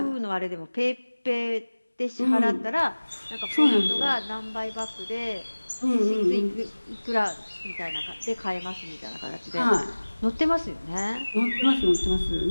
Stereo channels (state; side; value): inverted; both; correlation -1.00